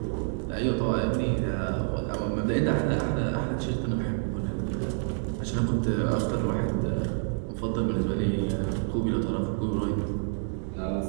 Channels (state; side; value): silent; left; digital silence